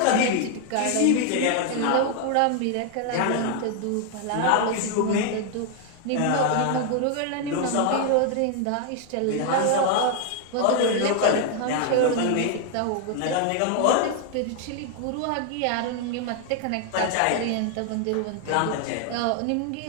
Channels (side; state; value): both; different; correlation 0.00